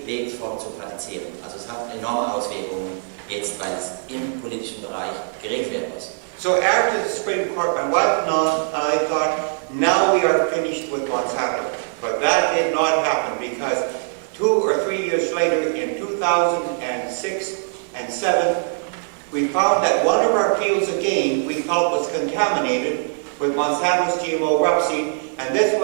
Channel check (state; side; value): silent; left; digital silence